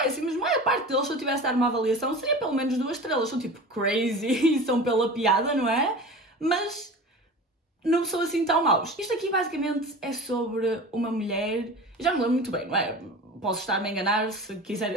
a maior parte deles, se eu tivesse de dar uma avaliação, seria pelo menos 2 estrelas. São tipo crazy e são pela piada, não é? Mas não são assim tão maus. Isto aqui basicamente é sobre uma mulher, eu já me lembro muito bem, não é? Posso estar-me a enganar, se quiserem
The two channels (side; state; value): both; normal; correlation 0.35